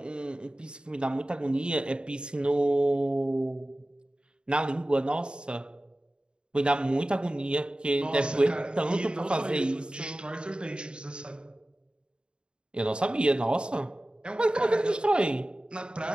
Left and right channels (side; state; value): left; late; 0.051 ms